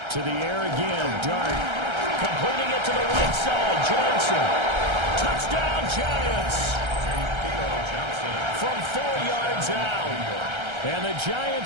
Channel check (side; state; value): left; late; 1.3 ms